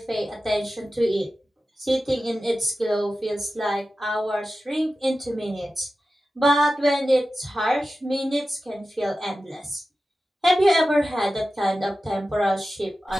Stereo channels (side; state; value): both; normal; correlation 0.94